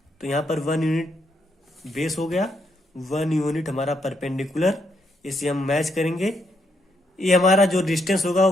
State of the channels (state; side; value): normal; both; correlation 0.77